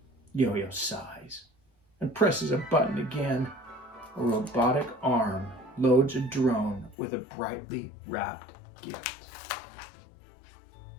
Yo-Yo sighs and presses a button again. A robotic arm loads a drone with a brightly wrapped gift.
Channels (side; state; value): right; drops out; at 7.0 s